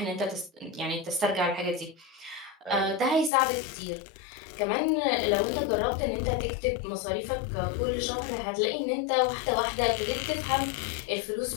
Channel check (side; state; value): right; drops out; at 3.3 s